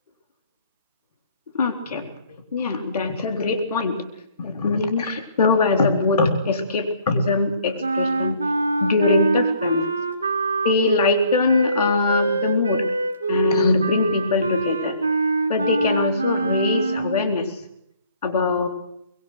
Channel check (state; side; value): inverted; both; correlation -0.60